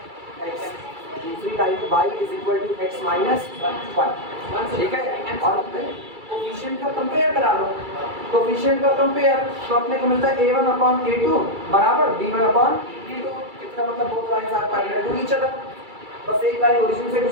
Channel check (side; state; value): left; late; 2.3 ms